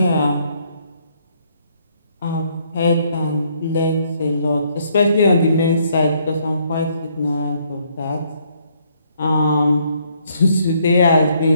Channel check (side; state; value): both; inverted; correlation -0.69